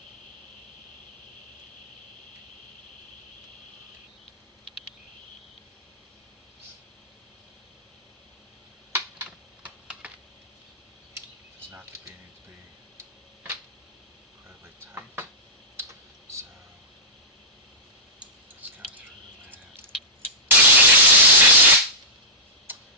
Does not need to be incredibly tight. So let's go through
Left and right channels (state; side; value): normal; both; correlation -0.12